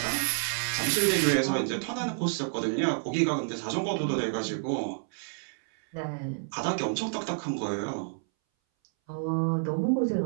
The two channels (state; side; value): silent; left; 59 dB below the other